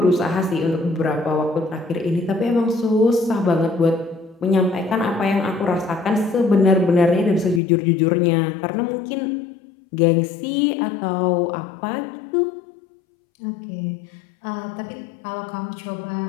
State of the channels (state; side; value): drops out; right; at 7.6 s